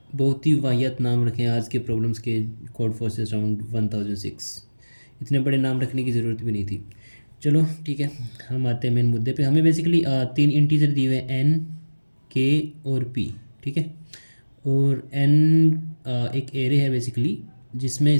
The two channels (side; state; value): both; inverted; correlation -1.00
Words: बहुत ही वाहियात नाम रखे हैं आज के प्रॉब्लम्स के। Code forces round 1006। इतने बड़े नाम रखने की ज़रूरत भी नहीं थी। चलो ठीक है, हम आते हैं मेन मुद्दे पे। हमें बेसिकली तीन इंटीजर दिए हुए हैं, एन, के और पी। ठीक है, और एन एक एरे है बेसिकली, जिसमें